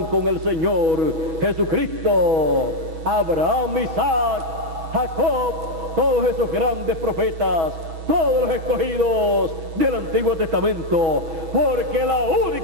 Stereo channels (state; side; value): late; left; 6.2 ms